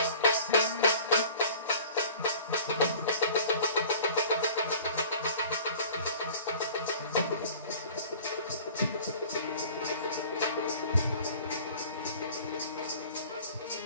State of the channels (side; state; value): both; inverted; correlation -0.46